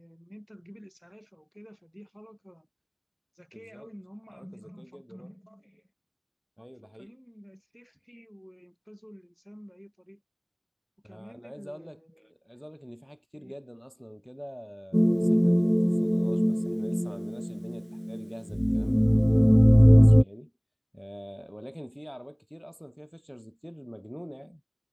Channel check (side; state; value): both; identical; correlation 1.00